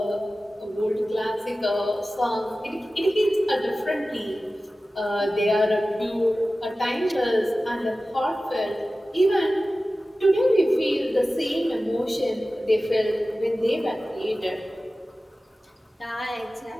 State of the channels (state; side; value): normal; both; correlation 0.96